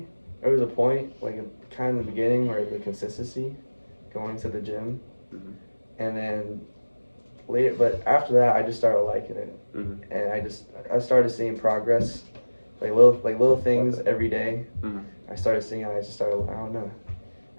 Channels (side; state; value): both; inverted; correlation -1.00